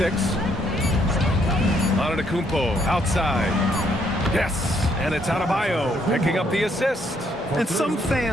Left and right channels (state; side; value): normal; both; correlation 0.71